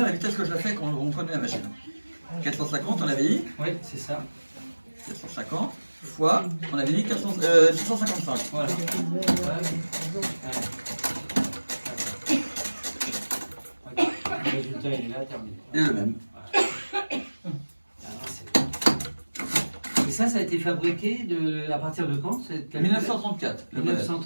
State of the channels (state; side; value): inverted; both; correlation -1.00